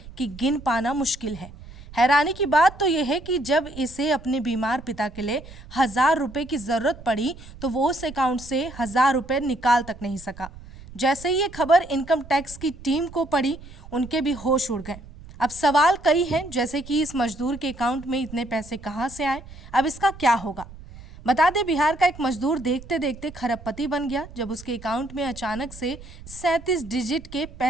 कि गिन पाना मुश्किल है। हैरानी की बात तो यह है कि जब इसे अपने बीमार पिता के लिए 1000 रुपए की जरूरत पड़ी तो वो उस अकाउंट से 1000 रुपए निकाल तक नहीं सका। जैसे ही ये खबर इनकम टैक्स की टीम को पड़ी, उनके भी होश उड़ गए। अब सवाल कई हैं, जैसे कि इस मजदूर के अकाउंट में इतने पैसे कहां से आए, अब इसका क्या होगा। बता दें, बिहार का एक मजदूर देखते देखते खरबपति बन गया जब उसके अकाउंट में अचानक से 37 डिजिट के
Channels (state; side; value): noise; right; rumble, 17 dB below the sound